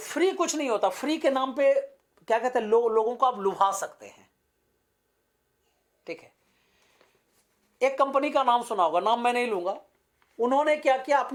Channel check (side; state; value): both; identical; correlation 1.00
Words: कुछ नहीं होता। फ्री के नाम पे क्या कहते हैं, लोगों को आप लुभा सकते हैं। ठीक है, एक कंपनी का नाम सुना होगा, नाम मैं नहीं लूंगा। उन्होंने क्या किया,